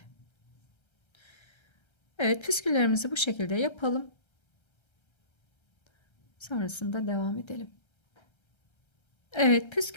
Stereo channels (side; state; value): right; late; 1.3 ms